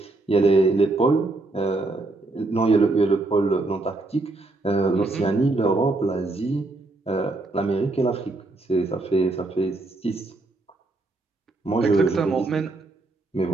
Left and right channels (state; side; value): quieter; left; 3.1 dB